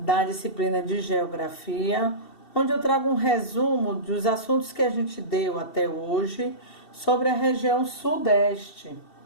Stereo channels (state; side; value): late; right; 2.7 ms